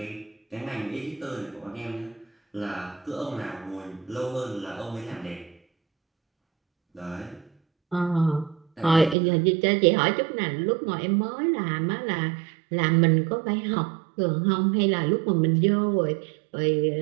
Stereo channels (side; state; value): left; drops out; at 9.2 s